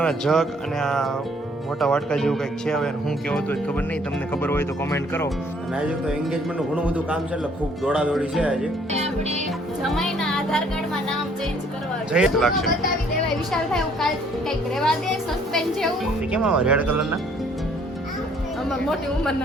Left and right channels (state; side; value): normal; both; correlation 0.62